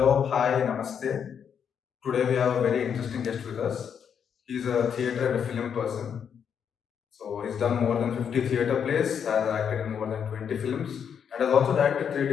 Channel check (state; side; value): quieter; right; 7.7 dB